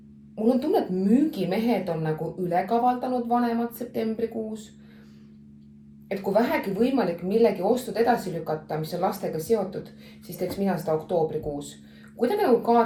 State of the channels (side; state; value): both; identical; correlation 1.00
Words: mul on tunne, et müügimehed on nagu ülekavaldanud vanemad septembrikuus. Et kui vähegi võimalik millegi ostud edasi lükata, mis on lastega seotud, siis teeks mina seda oktoobrikuus. Kuidagi nagu